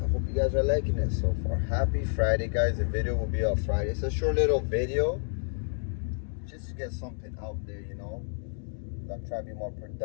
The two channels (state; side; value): silent; right; 58 dB below the other